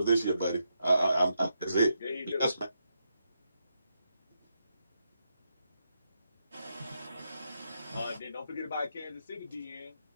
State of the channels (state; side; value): inverted; both; correlation -0.83